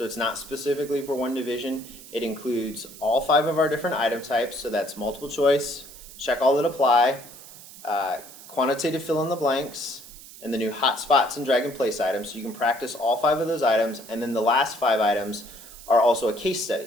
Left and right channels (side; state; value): right; noise; hiss, 17 dB below the sound